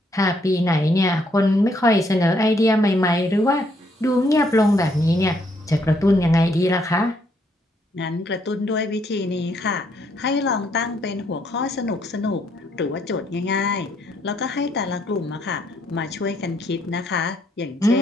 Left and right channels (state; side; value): normal; both; correlation 0.71